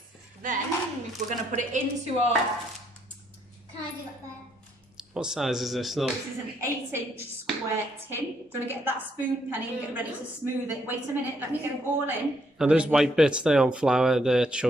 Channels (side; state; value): both; normal; correlation 0.72